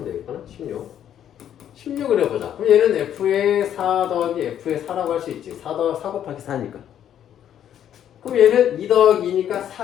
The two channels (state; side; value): quieter; right; 10.2 dB